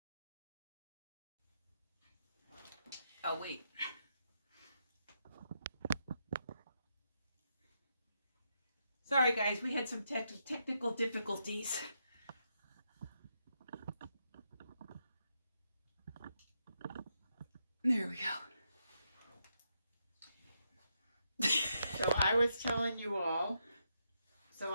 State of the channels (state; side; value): inverted; both; correlation -0.80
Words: Oh wait. Sorry guys, we had some technical difficulties. There we go. So I was telling you all